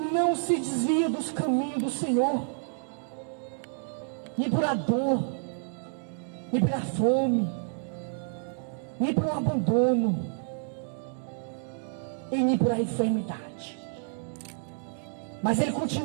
se desvia dos caminhos do Senhor, nem por a dor, nem pela fome, nem pelo abandono, e nem por a enfermidade. Mas ele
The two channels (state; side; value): silent; left; digital silence